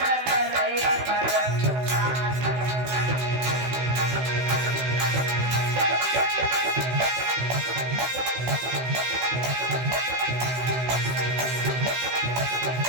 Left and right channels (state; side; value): late; left; 16 ms